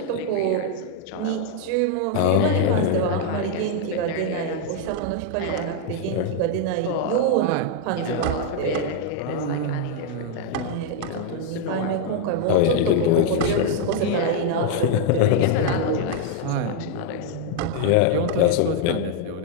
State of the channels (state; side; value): different; both; correlation 0.00